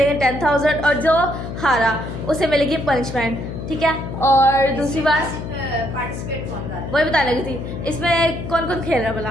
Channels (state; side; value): noise; left; hum, 7 dB below the sound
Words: 10,000 और जो हारा उसे मिलेगी पनिशमेंट, ठीक है। और दूसरी बात पार्टिसिपेट कौन कर रहा है? वही बताने लगी थी, इसमें कौन कौन खेल रहा है भला।